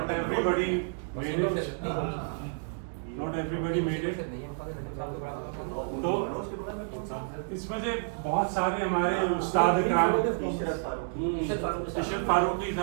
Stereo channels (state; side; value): silent; left; digital silence